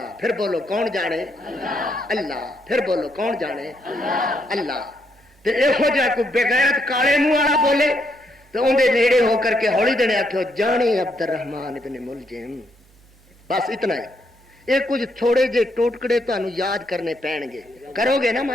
پھر بولو کون جانے؟ اللہ. پھر بولو کون جانے؟ اللہ. تے ایہو جا کوئی بغیرت کالے منہ والا بولے تو اندے نیڑے ہو کر کے ہولی دنے آکھو جانے عبد الرحمان ابن ملجم. بس اتنا ہی. یہ کچھ تھوڑے جے ٹوٹکڑے تانوں یاد کرنے پین گے، کرو گے نا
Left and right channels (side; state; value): right; noise; hum, 29 dB below the sound